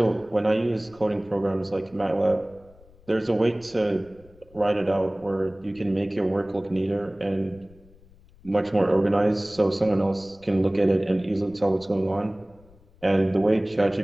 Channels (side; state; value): left; noise; rumble, 26 dB below the sound